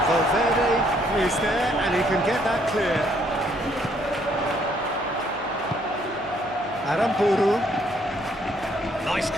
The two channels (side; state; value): right; noise; hum, 25 dB below the sound